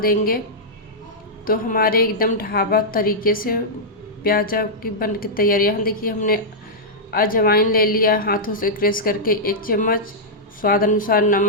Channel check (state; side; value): normal; both; correlation -0.10